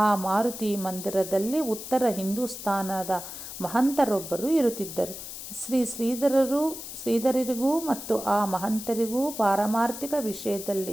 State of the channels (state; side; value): noise; left; hiss, 10 dB below the sound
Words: ಮಾರುತಿ ಮಂದಿರದಲ್ಲಿ ಉತ್ತರ ಹಿಂದೂಸ್ತಾನದ ಮಹಂತರೊಬ್ಬರು ಇರುತ್ತಿದ್ದರು. ಶ್ರೀಧರರಿಗೂ ಮತ್ತು ಆ ಮಹಂತರಿಗೂ ಪಾರಮಾರ್ಥಿಕ ವಿಷಯದಲ್ಲಿ